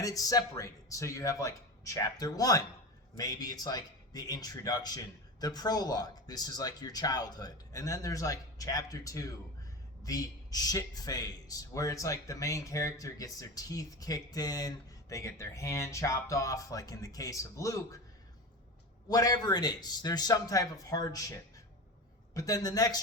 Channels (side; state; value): both; normal; correlation 0.26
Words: it's separated. So you have like chapter 1, maybe it's like the introduction, the prologue, this is like your childhood. And then there's like chapter 2, the shit phase, where it's like the main character gets their teeth kicked in, they get their hand chopped off, like in the case of Luke. Whatever it is, there's some type of hardship. But then the